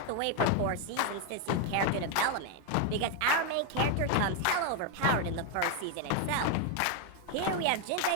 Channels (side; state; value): both; different; correlation 0.01